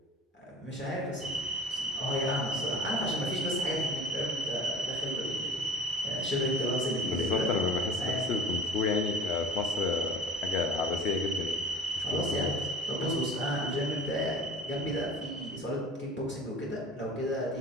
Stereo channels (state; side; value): normal; both; correlation 0.44